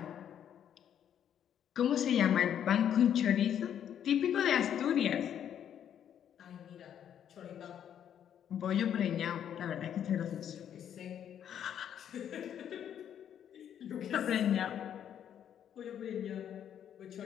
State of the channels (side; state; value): right; quieter; 9.5 dB